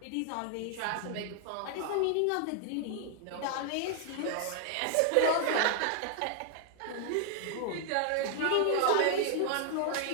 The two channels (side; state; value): both; different; correlation 0.00